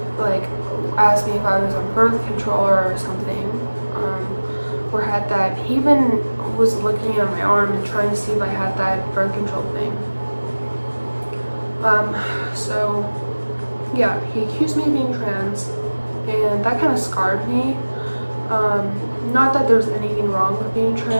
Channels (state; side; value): inverted; both; correlation -1.00